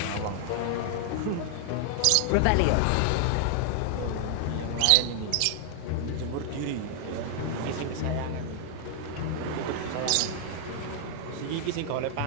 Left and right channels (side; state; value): both; different; correlation 0.00